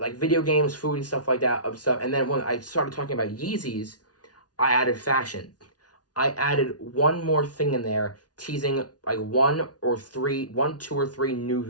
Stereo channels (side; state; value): right; late; 0.69 ms